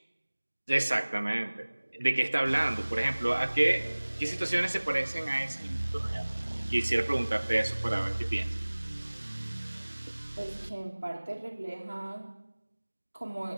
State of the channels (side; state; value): both; inverted; correlation -1.00